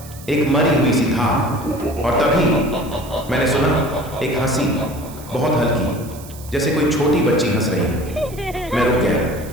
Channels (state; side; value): noise; right; hiss, 18 dB below the sound